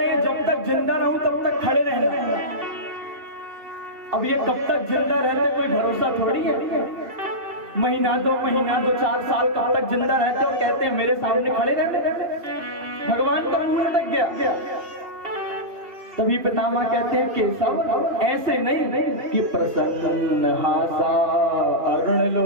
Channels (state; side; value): late; left; 2.9 ms